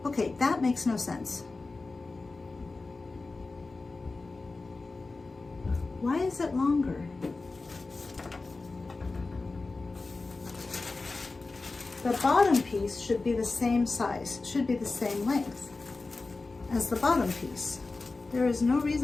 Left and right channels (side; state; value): right; quieter; 3.6 dB